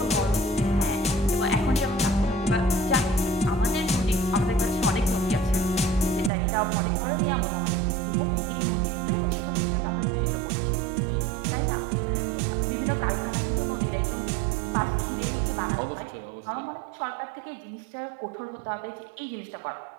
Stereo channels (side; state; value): left; drops out; at 6.3 s